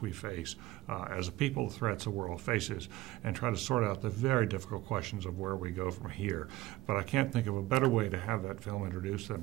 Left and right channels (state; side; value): quieter; left; 17.1 dB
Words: we face as a people, the threats the world faces, and try to sort out the very difficult questions of where we go from here. But I can't think of a better way to have that film introduced than